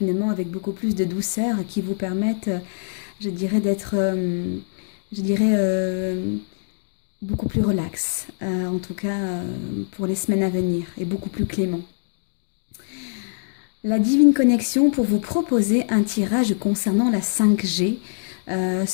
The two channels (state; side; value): silent; right; digital silence